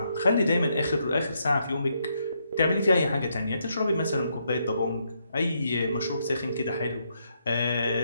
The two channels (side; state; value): both; inverted; correlation -0.77